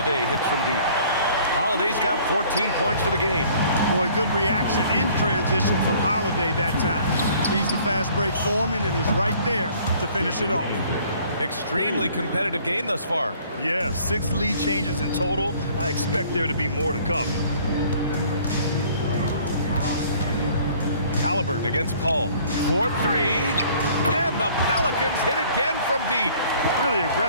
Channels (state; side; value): inverted; both; correlation -0.55